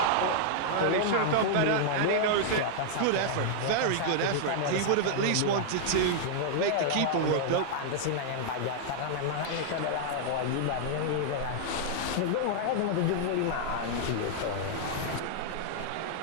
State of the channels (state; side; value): different; both; correlation -0.01